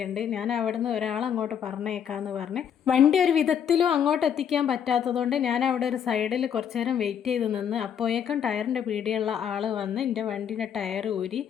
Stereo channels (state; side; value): quieter; right; 8.4 dB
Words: ഞാൻ അവിടുന്ന് ഒരാളങ്ങോട്ട് പറഞ്ഞേക്കാമെന്ന് പറഞ്ഞ്. വണ്ടി ഒരു വിധത്തിലും അങ്ങോട്ട് എത്തിക്കാൻ പറ്റാത്തതുകൊണ്ട് ഞാൻ അവിടെ ഒരു സൈഡിൽ കുറച്ച് നേരം വെയിറ്റ് ചെയ്ത് നിന്ന്. അപ്പോഴേക്കും ടയറിൻ്റെ പീടിയുള്ള ആൾ വന്ന് എൻ്റെ വണ്ടീൻ്റെ ടയർ ഊരി.